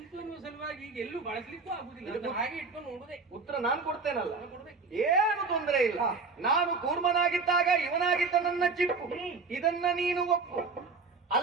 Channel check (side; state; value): left; quieter; 4.4 dB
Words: ಎನ್ನುವ ಸಲುವಾಗಿ ಈಗ ಎಲ್ಲೂ ಬಳಸ್ಲಿಕ್ಕೂ ಆಗುದಿಲ್ಲ. ಅದನ್ನ ಹಾಗೆ ಇಟ್ಕೊಂಡು ನೋಡುದೇ. ಉತ್ತರ ನಾನು ಕೊಡ್ತೇನಲ್ಲ, ಕೊಡ್ಬೇಕು. ಏನು ತೊಂದರೆ ಇಲ್ಲ. ನಾನು ಕೂರ್ಮನಾಗಿದ್ದಾಗ ಇವನಾಗಿದ್ದ ನನ್ನ ಚಿಪ್ಪು, ಇದನ್ನ ನೀನು ಒಪ್ಪು.